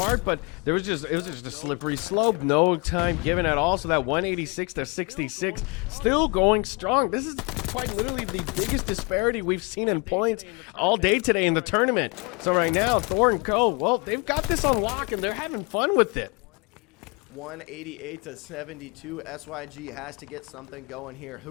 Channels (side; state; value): right; quieter; 30.9 dB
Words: but it was just a slippery slope. No time given at all. So that 186-66 still going strong. This is quite literally the biggest disparity we've seen in points all day today in the tournament. So right now, Thor and Co, well, they've got this on lock, and they're having fun with it. 188-72. SYG has to get something going here.